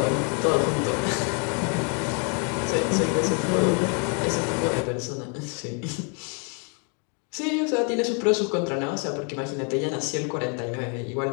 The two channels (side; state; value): right; quieter; 38.4 dB